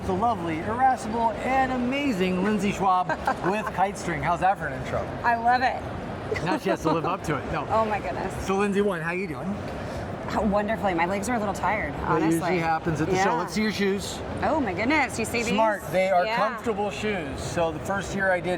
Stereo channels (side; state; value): both; identical; correlation 1.00